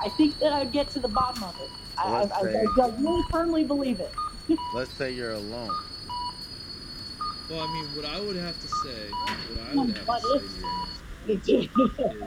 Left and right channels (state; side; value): identical; both; correlation 1.00